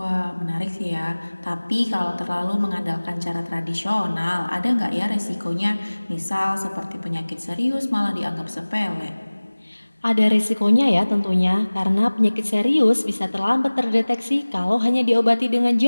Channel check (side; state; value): both; inverted; correlation -1.00